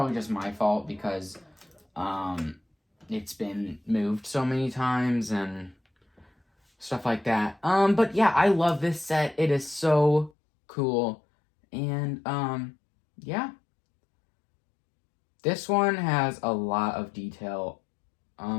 just my fault because it's been moved so many times and stuff like that. But yeah, I love this set. It is so cool. And yeah. This one has a lot of detail.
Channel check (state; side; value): drops out; right; at 10.3 s